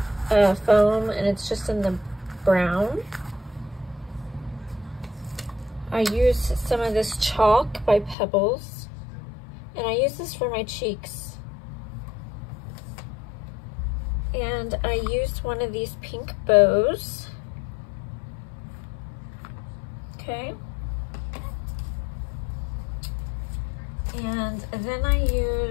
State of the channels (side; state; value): right; drops out; at 8.2 s